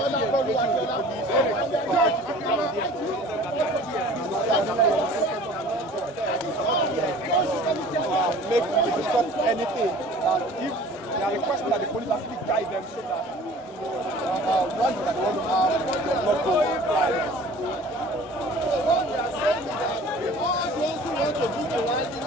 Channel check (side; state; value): both; normal; correlation 0.46